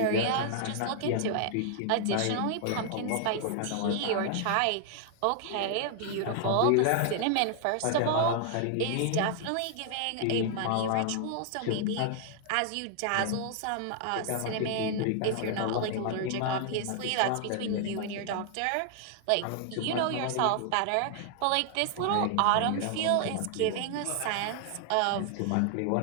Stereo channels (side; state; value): both; different; correlation 0.00